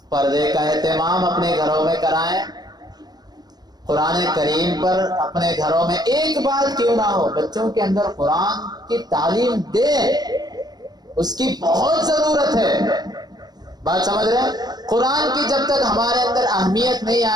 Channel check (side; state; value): left; late; 0.19 ms